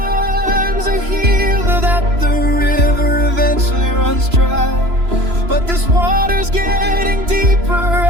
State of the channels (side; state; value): left; late; 3.0 ms